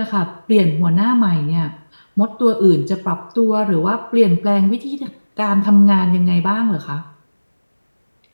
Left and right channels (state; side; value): inverted; both; correlation -1.00